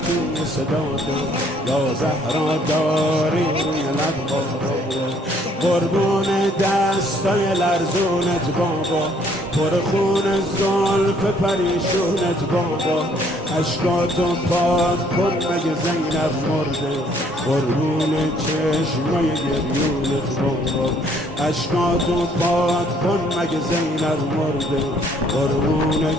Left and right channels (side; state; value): both; normal; correlation 0.63